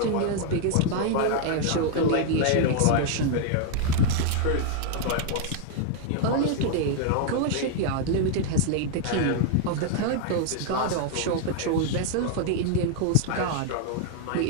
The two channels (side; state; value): both; different; correlation 0.00